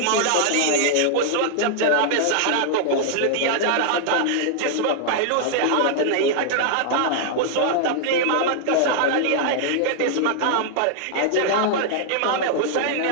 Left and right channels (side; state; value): both; different; correlation -0.01